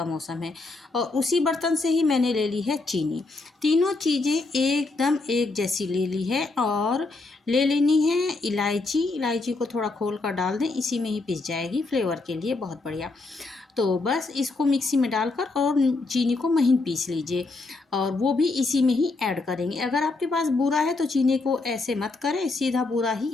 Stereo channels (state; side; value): quieter; right; 3.5 dB